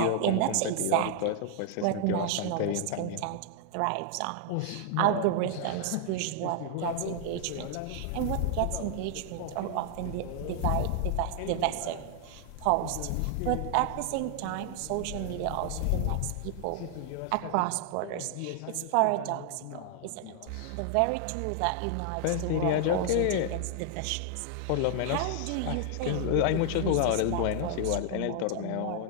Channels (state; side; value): different; both; correlation 0.00